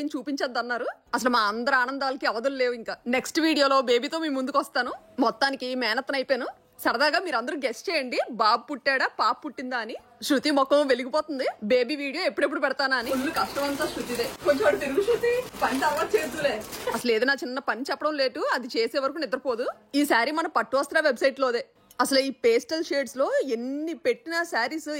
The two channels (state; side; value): identical; both; correlation 1.00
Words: చూపించద్దన్నారు. అసలు మా అందరి ఆనందాలకి అవధులు లేవు. ఇంకా నెక్స్ట్ వీడియోలో బేబీతో మీ ముందుకు వస్తాను. మొత్తానికి మేనత్తన అయిపోయాను. సరదాగా మీరు అందరూ గెస్ట్ చేయండి, బాబు పుట్టాడా పాప పుట్టిందా అని. శృతి ముఖం వెలిగిపోతుంది. బేబీ వీడియో ఎప్పుడెప్పుడు పెడతానా అని. ఫుల్ కష్టం అంతా శృతిదే. కొంచెం తిరుగు శృతి, పని తర్వాత చేతులే. అసలు ఏదైనా చిన్న పని చెప్పడం లేటు, అది చేసే వరకు నిద్రపోదు. ఈ శారీ మన పట్టు వస్త్ర వెబ్సైట్ లోదే. అసలు ఈ పేస్టల్ షేడ్స్ లో ఎన్ని పెట్టిన శారీస్